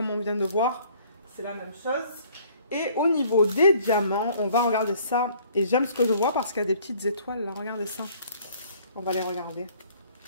on vient de voir. C'est la même chose. Et au niveau des diamants, on va regarder ça. Et j'aime ce que je vois parce qu'il y a des petites étoiles, là. Regardez ça. On va les regarder.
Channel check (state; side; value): inverted; both; correlation -0.57